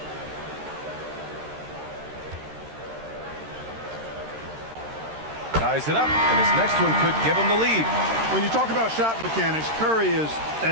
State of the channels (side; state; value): left; late; 13 ms